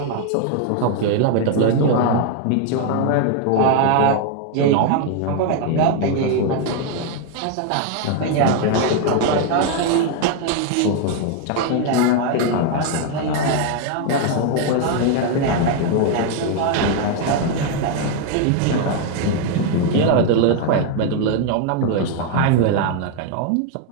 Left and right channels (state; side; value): different; both; correlation 0.01